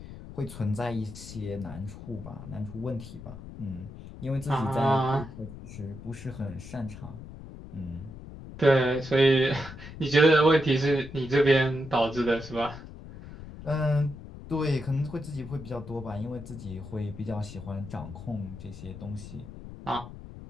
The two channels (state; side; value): noise; left; rumble, 13 dB below the sound